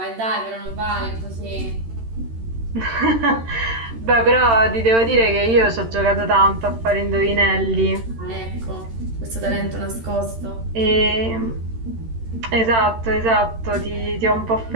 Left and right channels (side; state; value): left; late; 13 ms